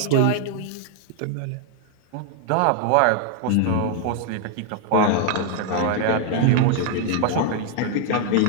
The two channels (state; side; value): different; both; correlation 0.00